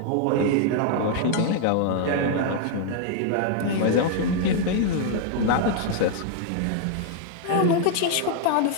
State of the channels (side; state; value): both; different; correlation 0.00